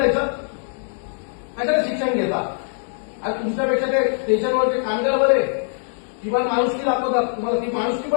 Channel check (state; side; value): silent; right; digital silence